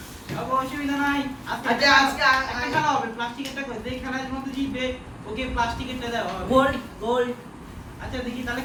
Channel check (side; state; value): both; identical; correlation 1.00